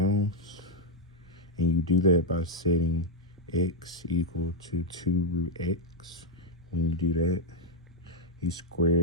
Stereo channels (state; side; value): normal; both; correlation -0.01